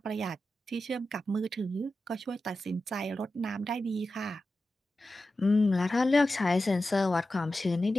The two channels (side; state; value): both; normal; correlation 0.92